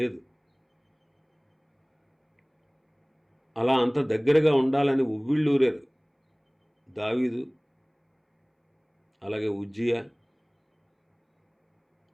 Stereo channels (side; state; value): both; identical; correlation 1.00